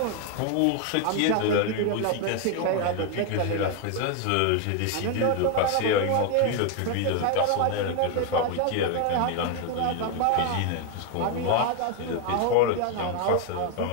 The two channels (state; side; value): different; both; correlation 0.01